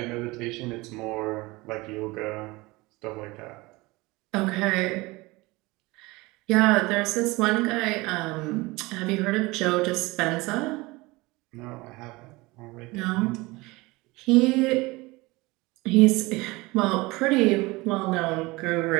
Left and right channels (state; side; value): quieter; left; 22.5 dB